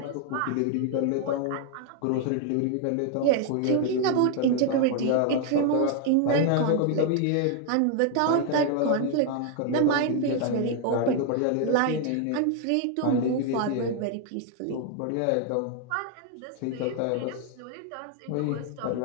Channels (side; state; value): both; different; correlation 0.00